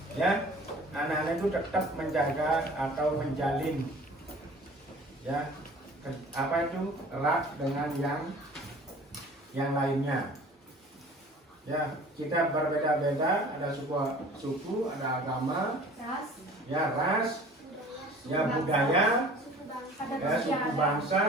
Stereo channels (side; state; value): both; normal; correlation 0.46